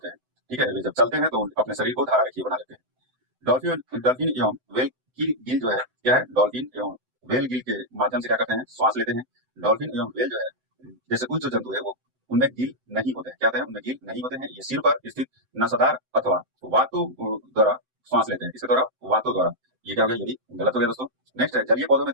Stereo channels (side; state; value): left; late; 7.8 ms